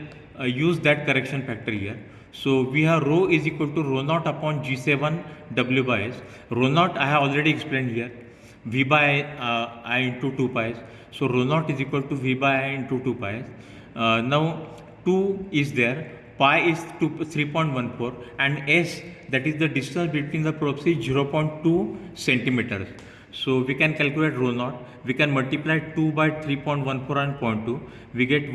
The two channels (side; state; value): both; identical; correlation 1.00